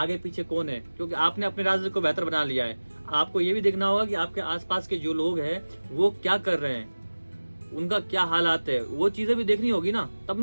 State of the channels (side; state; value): both; inverted; correlation -1.00